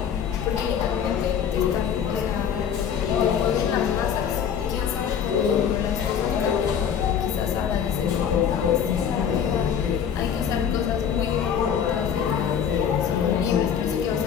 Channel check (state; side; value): quieter; right; 8.1 dB